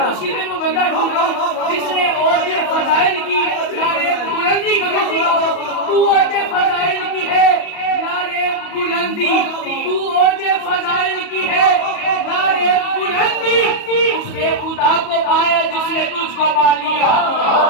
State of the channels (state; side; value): late; right; 37 ms